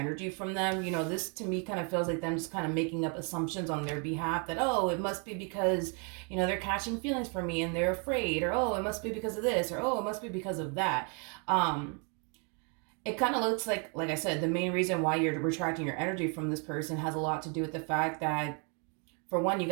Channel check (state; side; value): quieter; left; 37.0 dB